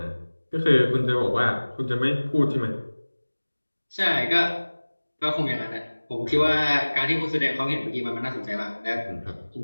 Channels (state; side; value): inverted; both; correlation -1.00